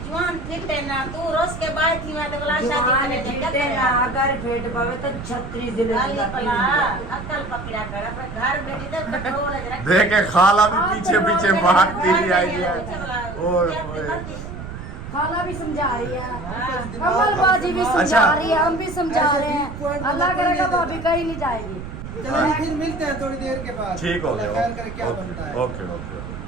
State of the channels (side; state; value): right; noise; rumble, 10 dB below the sound